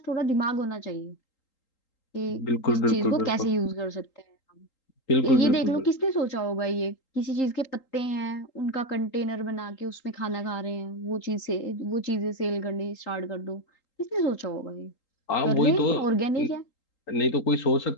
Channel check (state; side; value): late; right; 3.8 ms